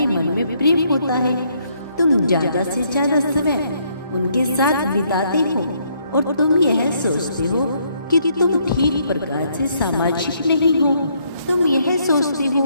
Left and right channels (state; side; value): inverted; both; correlation -0.70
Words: मन में प्रेम होता है, तुम ज्यादा से ज्यादा समय उनके साथ बिताते हो और तुम यह सोचते हो कि तुम ठीक प्रकार से सामाजिक नहीं हो। तुम यह सोचते